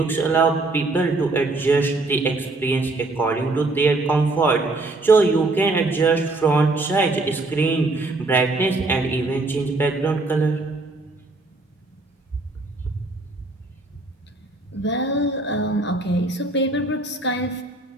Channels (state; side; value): quieter; left; 3.1 dB